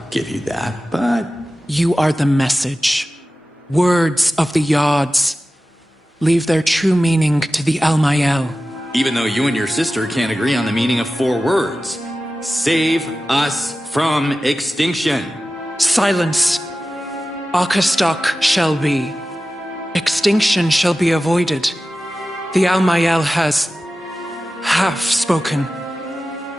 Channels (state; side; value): normal; both; correlation 0.95